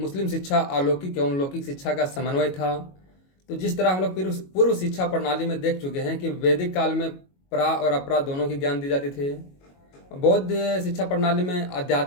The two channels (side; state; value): right; late; 22 ms